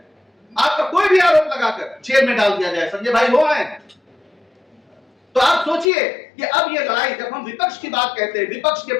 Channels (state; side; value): drops out; right; at 5.9 s